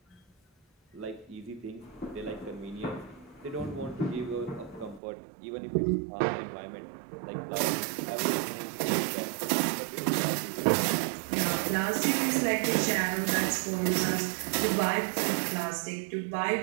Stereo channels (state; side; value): drops out; left; at 5.0 s